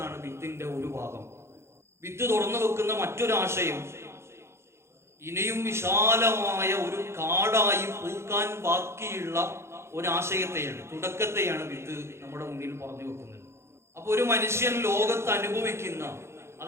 വിത്തിന്റെ ഒരു ഭാഗം. വിത്ത് തുറന്നു വെക്കുന്ന മറ്റൊരാശയം ഇനിയും വിശാലമായ ഒരു കാടായി പൂക്കാൻ ബാക്കിയുള്ള ഒരാശയത്തെയാണ്, തുടക്കത്തെയാണ് വിത്ത് നമ്മുടെ മുന്നിൽ പറഞ്ഞു വെക്കുന്നത്. അപ്പൊ ഒരു മനുഷ്യൻ ലോകത്ത് അനുഭവിക്കുന്ന,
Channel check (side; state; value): left; late; 0.13 ms